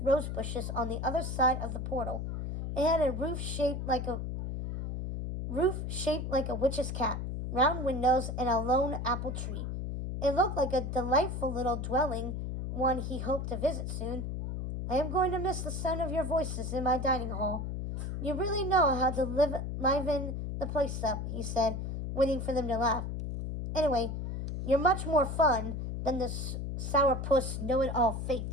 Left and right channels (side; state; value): left; noise; hum, 4 dB below the sound